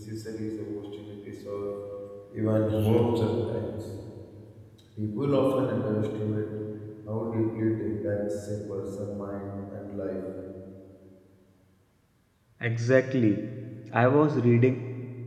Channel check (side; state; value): both; identical; correlation 1.00